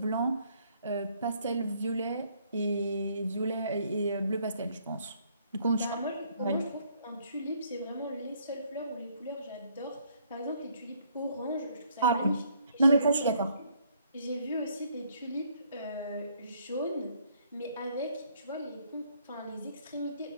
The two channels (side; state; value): both; inverted; correlation -0.66